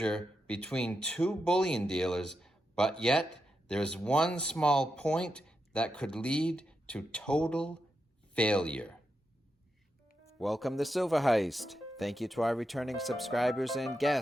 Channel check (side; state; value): both; normal; correlation 0.86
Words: between two bullion dealers, but yet there's one small point that could lead to total failure. Welcome to Silver Heist. Thank you to our returning subscribers and